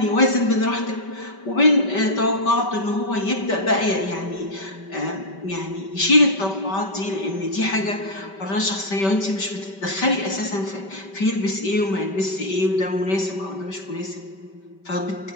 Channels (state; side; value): late; right; 5.2 ms